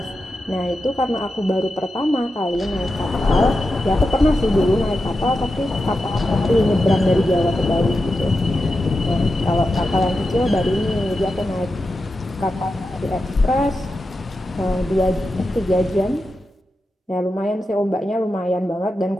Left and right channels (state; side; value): normal; both; correlation 0.90